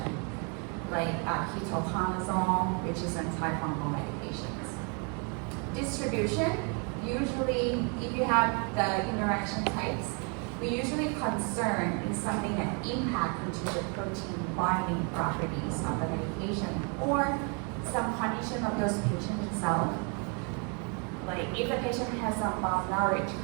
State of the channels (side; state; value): left; quieter; 36.4 dB